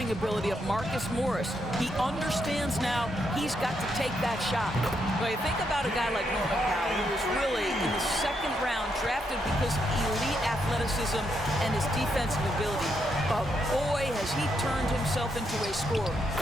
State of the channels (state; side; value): normal; both; correlation 0.79